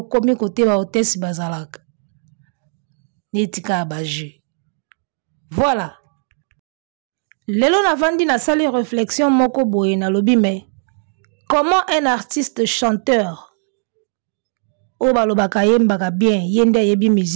comme côté ba hôtesse bazalak. Netika abaje. Voilà. Lelo na vandi na sali réflexion moko boye na lobi mais comment un artiste chanteur o balobaka yembaka bien yende yebi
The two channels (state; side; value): silent; left; digital silence